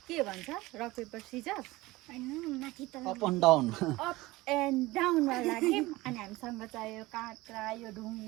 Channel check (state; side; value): quieter; left; 19.9 dB